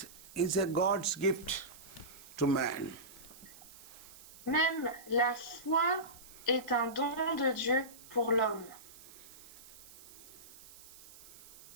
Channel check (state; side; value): noise; right; hiss, 19 dB below the sound